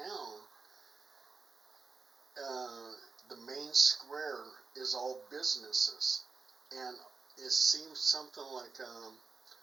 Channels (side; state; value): left; quieter; 4.5 dB